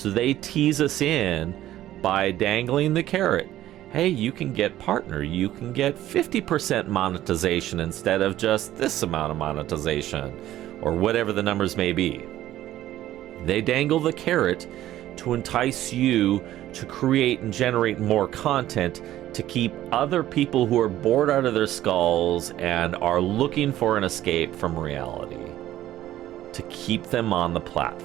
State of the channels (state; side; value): quieter; left; 13.7 dB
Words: they tease us in by dangling the carrot. Hey, you can get partner, you can get 50% monetization instead of just this amount of monetization, or whatever the numbers may be. They dangle the carrot to entice you to create and generate more content, to keep other people who are bored out of their skulls and are looking for an escape from reality, to keep them on the